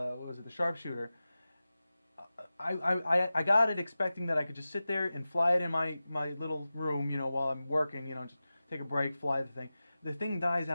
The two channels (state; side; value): inverted; both; correlation -0.95